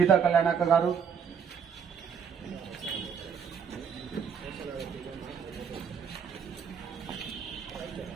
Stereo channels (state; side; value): quieter; left; 7.0 dB